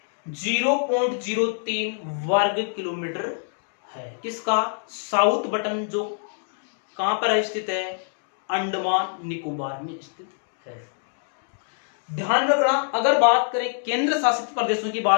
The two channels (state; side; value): silent; right; digital silence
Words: 0.03 वर्ग किलोमीटर है। किसका? साउथ बटन, जो कहां पर है स्थित है? अंडमान निकोबार में स्थित है। ध्यान रखना, अगर बात करें केंद्र शासित प्रदेशों की